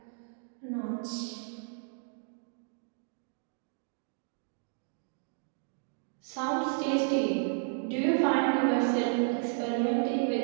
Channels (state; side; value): silent; left; digital silence